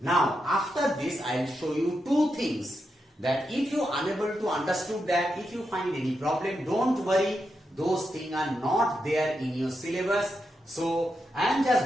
Now, after this, I will show you 2 things. That if you are unable to understood that, if you find any problem, don't worry. Those things are not there in your syllabus. So I am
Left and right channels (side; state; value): both; normal; correlation 0.85